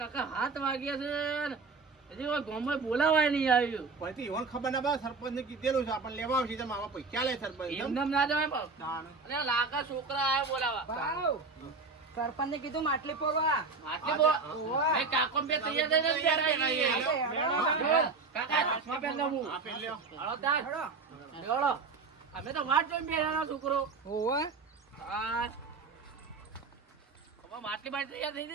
7 વાગ્યા છે હજી કોઈ ગામમાં બોલાવાય નહીં આવ્યું. પછી ઈવન ખબર ના બા સરપંચ ને કીધેલું છે આપણને લેવા આવશે. તમે આમાં પૈસા લે સરપંચ. એમને ના જવાય બાપ. અરે આ લાકા છોકરા આયા બોલાવા. સરપંચ ને કીધું માટલી પોવા. એ કાકો બે તૈયાર થઈને જ બેઠા. કાકા ચશ્મા પહેર લઉં હું. આ પેલ લ્યો. હળો તાર. હળો. અમે તો વાટ જોઈને બેઠા છોકરો. ઓવા હા હવે માટલી બાટલી તૈયાર થઈ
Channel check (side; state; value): left; quieter; 4.2 dB